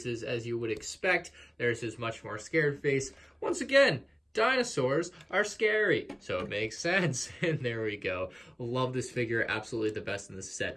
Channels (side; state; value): both; identical; correlation 1.00